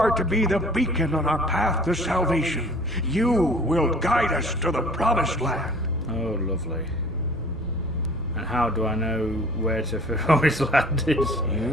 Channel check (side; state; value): both; normal; correlation 0.50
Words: to be the beacon on our path to salvation. You will guide us to the promised land. Oh, lovely. And how do I know where to promised land is?